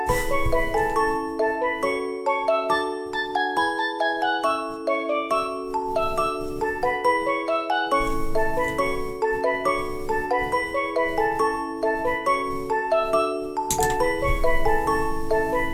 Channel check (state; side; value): identical; both; correlation 1.00